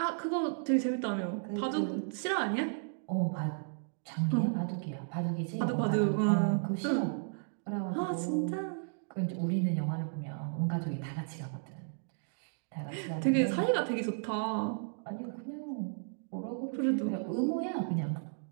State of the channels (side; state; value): left; silent; digital silence